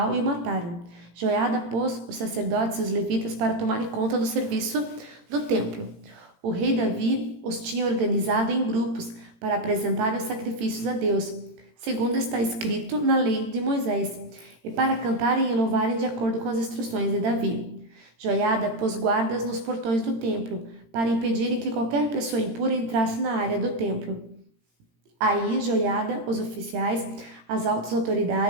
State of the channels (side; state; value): left; late; 17 ms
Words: e o mataram. Joiada pôs os sacerdotes e os levitas para tomarem conta do serviço do templo. O rei Davi os tinha organizado em grupos para apresentarem os sacrifícios a Deus, segundo está escrito na lei de Moisés, e para cantarem e louvarem de acordo com as instruções de Davi. Joiada pôs guardas nos portões do templo, para impedirem que qualquer pessoa impura entrasse na área do templo. Aí Joiada, os oficiais, as altas